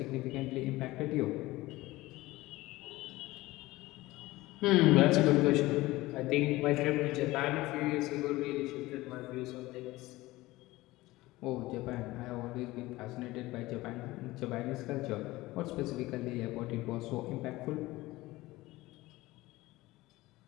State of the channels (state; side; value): quieter; right; 18.9 dB